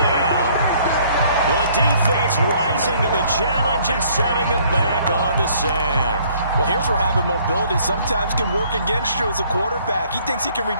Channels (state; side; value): inverted; both; correlation -0.61